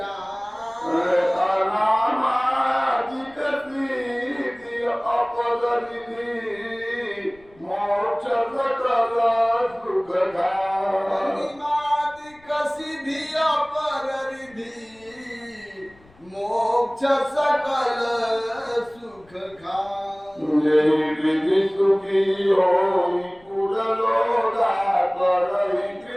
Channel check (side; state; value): left; noise; rumble, 28 dB below the sound